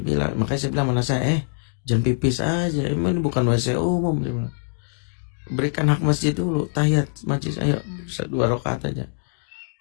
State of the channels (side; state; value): right; silent; digital silence